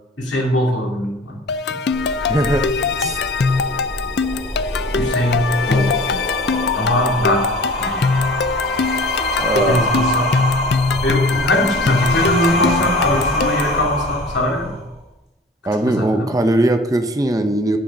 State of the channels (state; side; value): normal; both; correlation 0.43